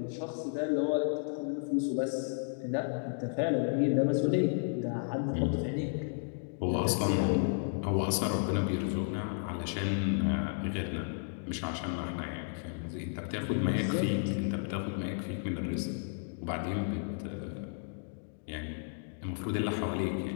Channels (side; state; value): right; silent; digital silence